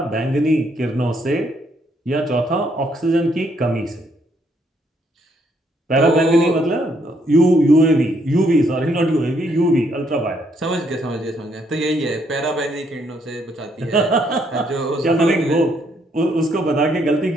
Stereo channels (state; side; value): normal; both; correlation 0.71